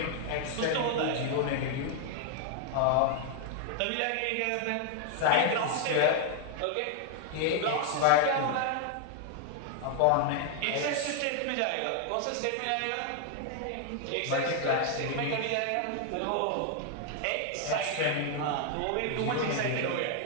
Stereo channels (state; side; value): different; both; correlation 0.00